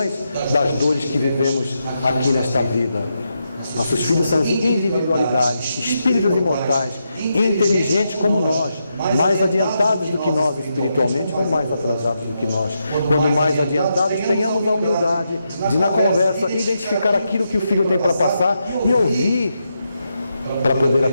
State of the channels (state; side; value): inverted; both; correlation -0.84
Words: das dores que vivemos aqui nesta vida. Nossos filhos são individualidades, espíritos imortais, inteligentes como nós, mais adiantados do que nós espiritualmente ou mais atrasados do que nós. Quando mais adiantados, tenhamos a humildade de, na conversa, identificar aquilo que o filho tem para passar e ouvir para poder